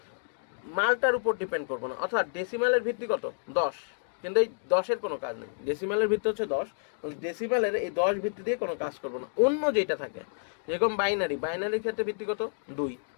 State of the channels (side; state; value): right; silent; digital silence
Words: মালটার উপর ডিপেন্ড করবো না। অর্থাৎ ডেসিমালের ভিত্তি কত? 10, কিন্তু এই 10-এর কোনো কাজ নেই। ডেসিমালের ভিত্তি হচ্ছে 10, ডেসিমালের এই 10 ভিত্তি দিয়ে কোনো কাজ করবো না। অন্য যেটা থাকে যেরকম বাইনারি, বাইনারির ক্ষেত্রে ভিত্তি কত? 2,